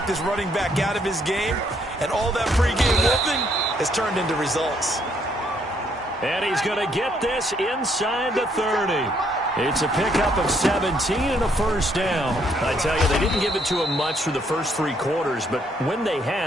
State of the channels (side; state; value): both; normal; correlation 0.70